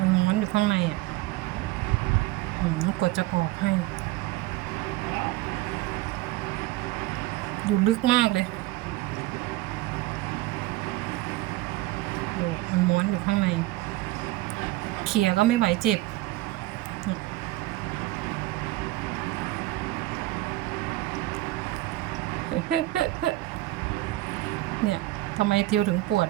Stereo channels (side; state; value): left; quieter; 17.7 dB